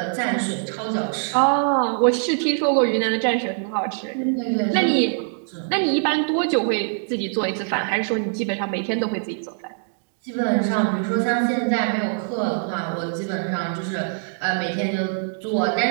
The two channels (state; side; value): silent; left; digital silence